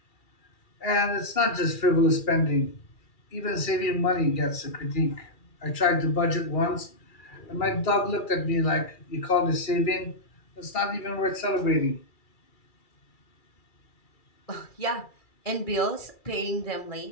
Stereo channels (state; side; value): late; right; 2.3 ms